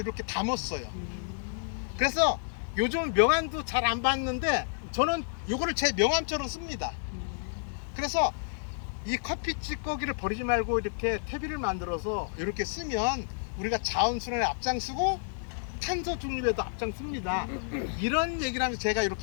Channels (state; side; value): silent; right; digital silence